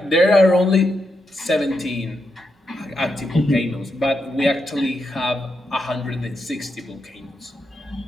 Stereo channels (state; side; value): normal; both; correlation 0.83